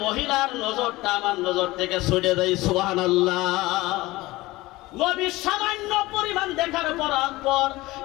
মহিলার নজরটা আমার নজর থেকে ছুটে যায়। সুবহানাল্লাহ। নবী সামান্য পরিমাণ দেখার পর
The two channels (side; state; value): right; quieter; 19.5 dB